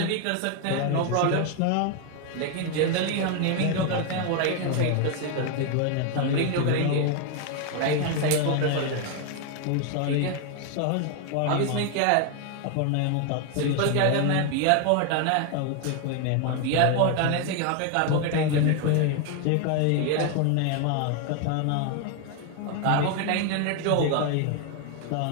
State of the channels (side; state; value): both; different; correlation 0.01